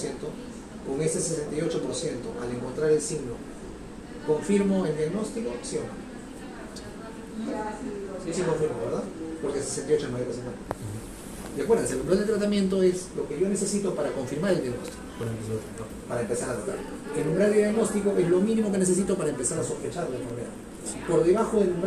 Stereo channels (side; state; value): both; identical; correlation 1.00